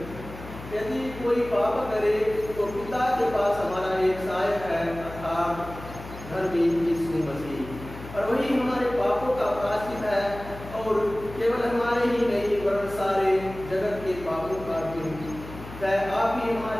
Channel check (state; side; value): noise; left; hum, 14 dB below the sound